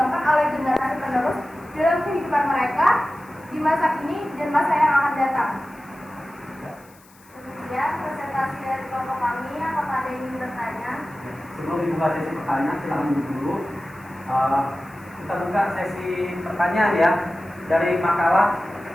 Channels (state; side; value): noise; left; hiss, 27 dB below the sound